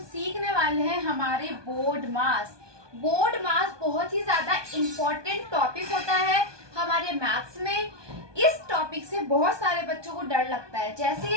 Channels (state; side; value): late; left; 1.2 ms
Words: सीखने वाले हैं हमारे बोर्ड मास। बोर्ड मास बहुत ही ज्यादा इम्पोर्टेंट टॉपिक होता है हमारे मैथ्स में। इस टॉपिक से बहुत सारे बच्चों को डर लगता है। जैसे